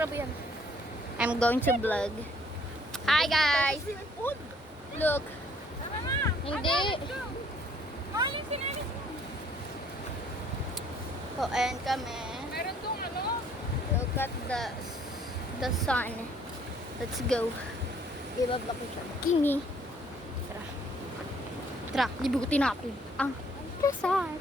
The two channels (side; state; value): both; normal; correlation 0.61